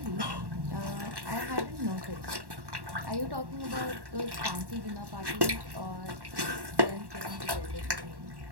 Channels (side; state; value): left; late; 1.1 ms